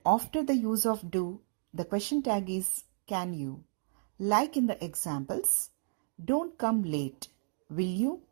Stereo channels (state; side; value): silent; left; digital silence